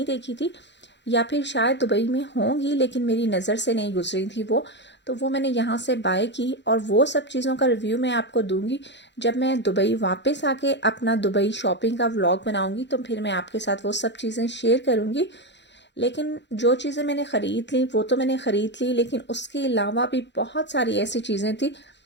देखी थी, या फिर शायद दुबई में होंगी लेकिन मेरी नज़र से नहीं गुजरी थी वो। तो वो मैंने यहाँ से बाय की और वो सब चीज़ों का रिव्यू मैं आपको दूंगी जब मैं दुबई वापस आके अपना दुबई शॉपिंग का व्लॉग बनाऊंगी, तो फिर मैं आपके साथ वो सब चीज़ें शेयर करूँगी। लेकिन जो चीज़ें मैंने ख़रीद ली वो तो मैंने ख़रीद ली, लेकिन उसके अलावा भी बहुत सारी ऐसी चीज़ें थी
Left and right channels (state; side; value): late; right; 0.52 ms